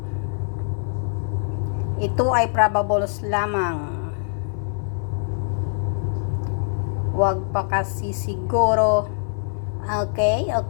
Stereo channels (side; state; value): right; silent; digital silence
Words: Ito ay probables lamang. Huwag pa kasi siguro. Okay.